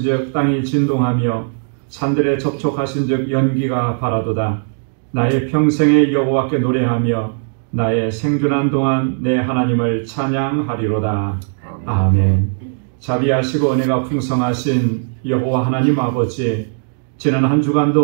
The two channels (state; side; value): silent; left; 68 dB below the other